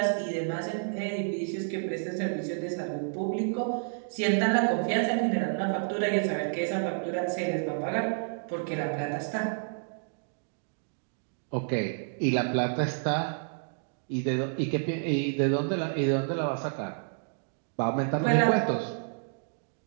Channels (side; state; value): left; silent; digital silence